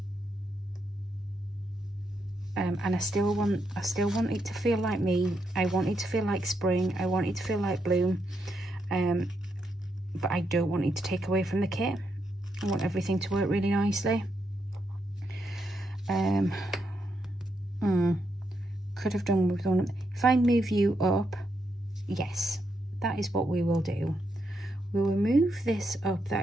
and I still want it to feel like me. I want it to feel like spring. I want it to feel like bloom, but I don't want it to take away from the kit. I want everything to work really could have done with one. If I move you up, yes, that is what we will do. We will move this up that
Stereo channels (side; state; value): both; normal; correlation 0.81